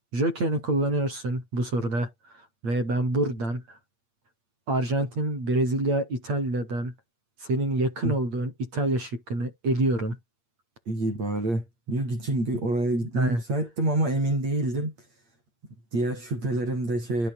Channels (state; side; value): late; left; 8.6 ms